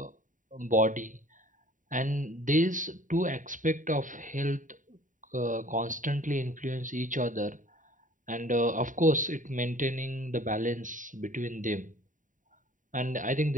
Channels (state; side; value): late; left; 0.38 ms